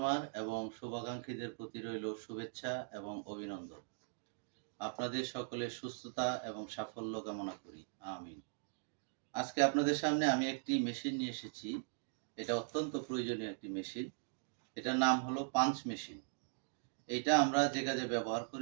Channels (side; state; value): left; silent; digital silence